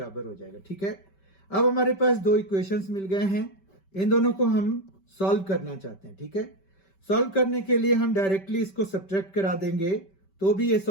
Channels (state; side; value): late; right; 5.2 ms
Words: हो जाएगा। ठीक है, अब हमारे पास दो इक्वेशंस मिल गए हैं, इन दोनों को हम सॉल्व करना चाहते हैं। ठीक है, सॉल्व करने के लिए हम डायरेक्टली इसको सब्ट्रैक्ट करा देंगे तो भी ये